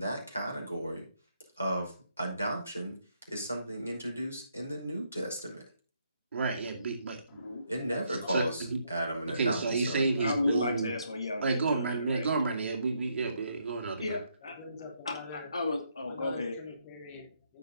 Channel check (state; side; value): inverted; both; correlation -0.75